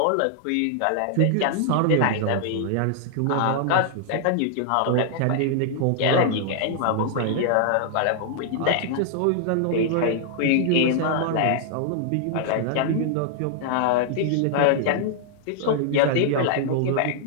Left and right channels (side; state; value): both; different; correlation -0.01